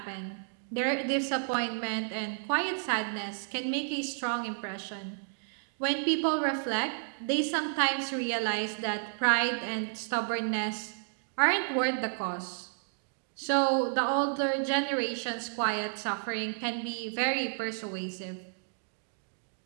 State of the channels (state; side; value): silent; left; digital silence